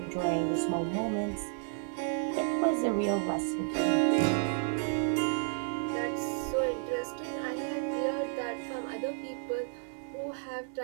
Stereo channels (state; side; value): silent; left; 57 dB below the other